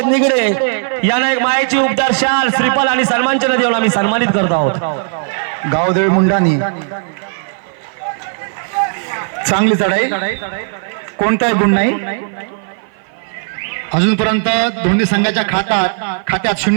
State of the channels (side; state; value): left; silent; 55 dB below the other